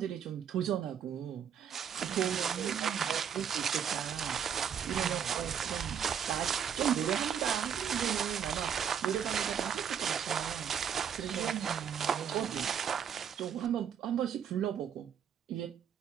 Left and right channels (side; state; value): left; quieter; 8.2 dB